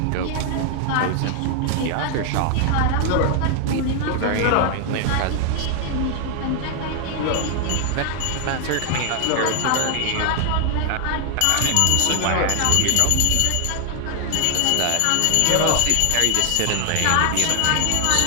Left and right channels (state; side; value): different; both; correlation 0.00